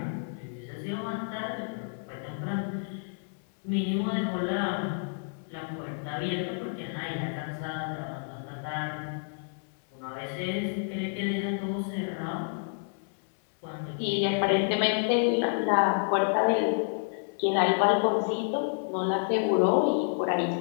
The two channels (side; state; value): right; silent; 58 dB below the other